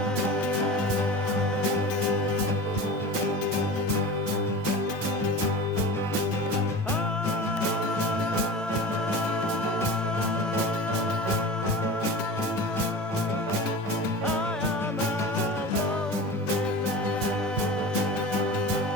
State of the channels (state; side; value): normal; both; correlation 0.33